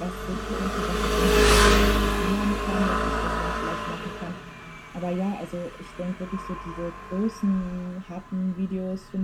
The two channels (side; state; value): both; identical; correlation 1.00